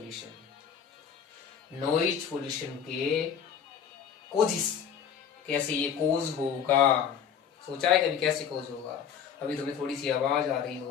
Noise pollution के कोजेस, कैसे ये कोज होगा? सोचा है कभी कैसे कोज होगा? अभी तुम्हें थोड़ी सी आवाज आ रही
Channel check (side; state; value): right; quieter; 7.8 dB